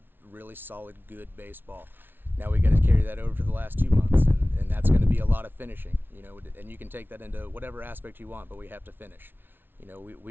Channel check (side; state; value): left; late; 0.10 ms